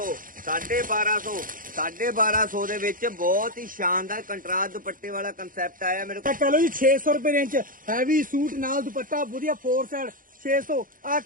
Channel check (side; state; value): left; late; 0.40 ms